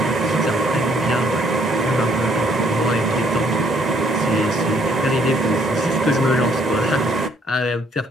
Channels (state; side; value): normal; both; correlation 0.66